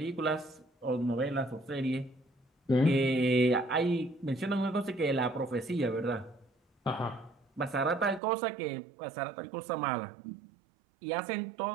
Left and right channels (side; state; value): left; drops out; at 8.2 s